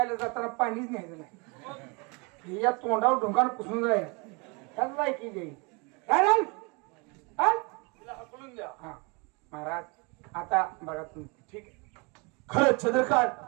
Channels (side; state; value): left; quieter; 30.1 dB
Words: जाताना पाणीच न्यायचं नाही. हे या तोंडावर ढोंगानं पुसून जाईल. त्याच लायकी जाईल. हाकलून द्या. हा महाराज आता बघा तुम्ही ठीक आहे. खरंच चंद्रकांत,